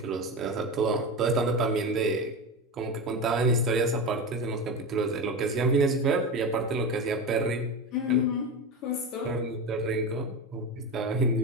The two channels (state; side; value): normal; both; correlation 0.22